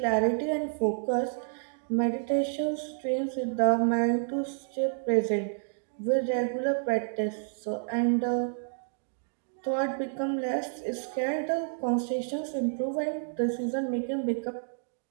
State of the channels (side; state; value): left; silent; digital silence